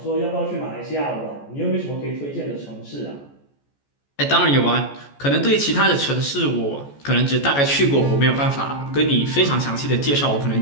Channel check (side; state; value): right; late; 14 ms